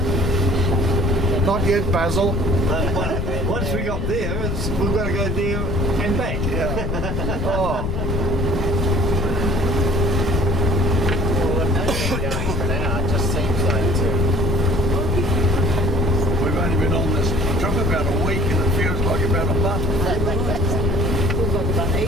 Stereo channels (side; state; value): left; noise; rumble, 2 dB below the sound